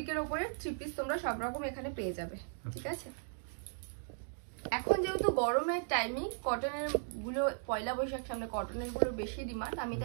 উপরে 3 পিস তোমরা সব রকম এখানে পেয়ে যাবে, ঠিক আছে। এখন যেহেতু গরমের টাইমিং, কটনের গুলো পয়লা বৈশাখ সামনে, কটনের গুলো বেশি ডিমান্ড, আমি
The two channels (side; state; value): left; silent; digital silence